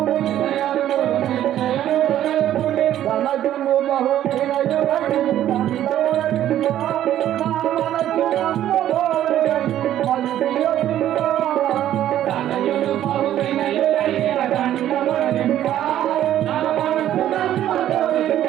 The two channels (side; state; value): left; quieter; 12.0 dB